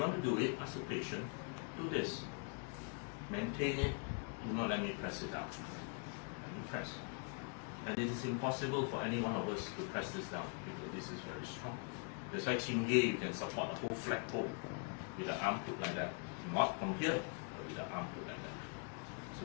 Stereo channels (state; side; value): quieter; right; 39.1 dB